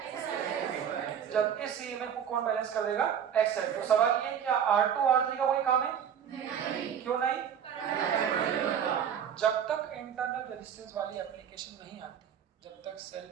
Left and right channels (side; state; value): left; quieter; 8.4 dB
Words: जब इस ईएमएफ को कौन बैलेंस कर देगा, XL। तो सवाल ये क्या R2 R3 का कोई काम है, नहीं। क्यों नहीं, जब तक इंटरनल रेजिस्टेंस वाली एप्लीकेशन नहीं आती, जब तक सेल